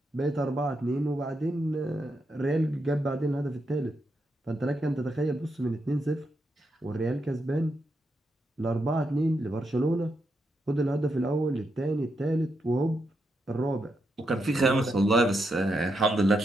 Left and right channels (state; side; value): normal; both; correlation 0.83